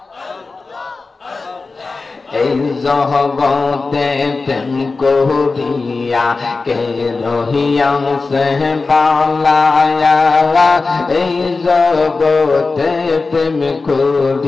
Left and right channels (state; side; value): quieter; right; 3.9 dB